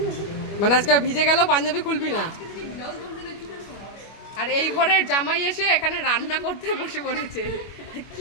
মানে আজকে ভিজে গেল, পাঞ্জাবি খুলবি না। আর এই ঘরের জামাই এসে এখানে রান্না করতে বসে পড়েছে।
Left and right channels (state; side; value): late; right; 25 ms